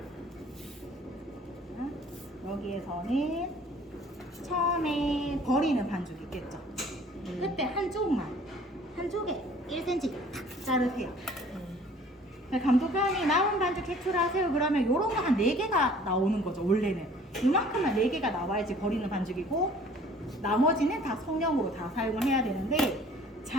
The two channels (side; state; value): both; normal; correlation 0.52